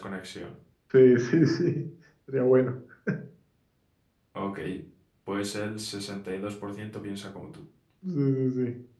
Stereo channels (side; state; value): both; identical; correlation 1.00